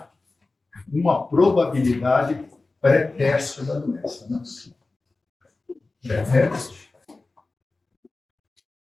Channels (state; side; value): quieter; right; 3.4 dB